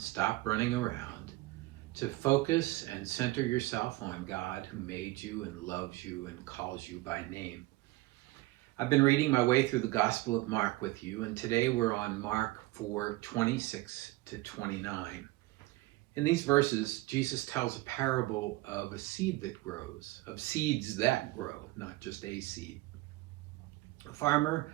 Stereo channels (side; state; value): left; quieter; 19.5 dB